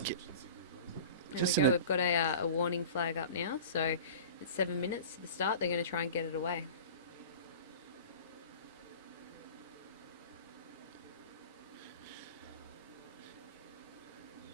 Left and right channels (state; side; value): inverted; both; correlation -0.38